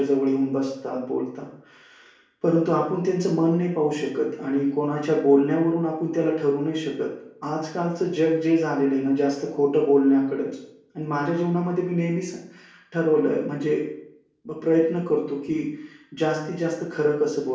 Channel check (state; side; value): identical; both; correlation 1.00